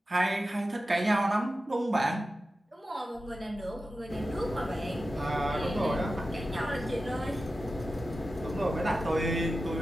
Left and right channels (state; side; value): normal; both; correlation 0.93